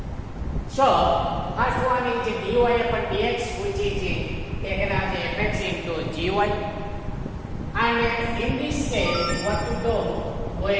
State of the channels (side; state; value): both; identical; correlation 1.00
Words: So, first one is dy upon dx, which is taken as fx into gy. And in this case, what to do?